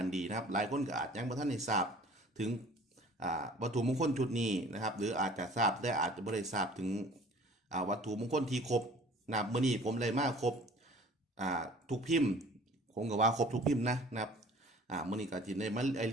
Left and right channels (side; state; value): both; normal; correlation 0.49